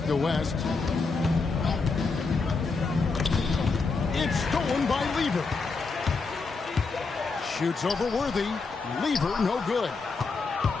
to West. It's stolen by Lever. Shoots over Worthy. Lever, no good.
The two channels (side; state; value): right; quieter; 4.2 dB